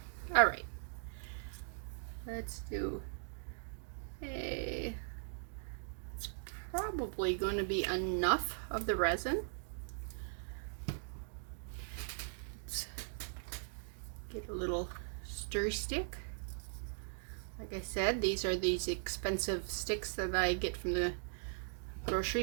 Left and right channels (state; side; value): silent; left; digital silence